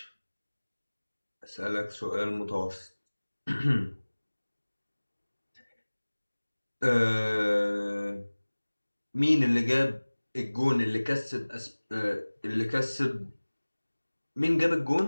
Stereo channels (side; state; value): both; inverted; correlation -1.00